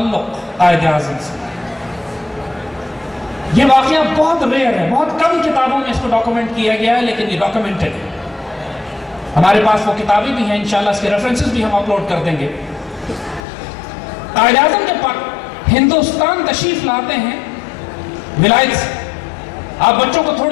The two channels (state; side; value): drops out; right; at 13.4 s